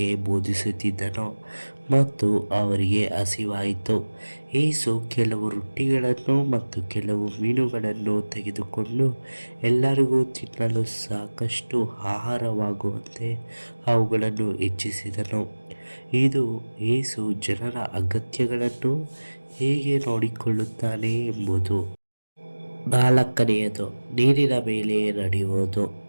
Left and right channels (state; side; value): inverted; both; correlation -1.00